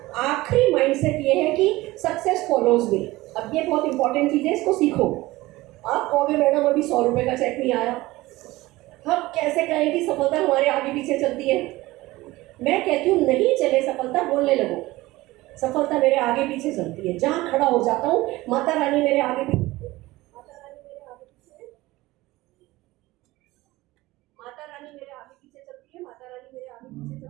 आखिरी माइंडसेट ये है कि सक्सेस फॉलोज मी। अब ये बहुत इंपॉर्टेंट चीज़ है, इसको सीखो। आप कहोगे मैडम अभी 100 रुपये का चेक नहीं आया, हम कैसे कहें कि सफलता हमारे आगे पीछे चलती है? मैं कहती हूँ नहीं चले सफलता, बोलने लगो सफलता मेरे आगे पीछे चलती है। जहाँ खड़ा हो जाता हूँ माता रानी मेरे आगे पीछे, माता रानी मेरे आगे पीछे, माता रानी मेरे आगे पीछे चलती है, माता रानी मेरे आगे पीछे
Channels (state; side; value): quieter; left; 19.1 dB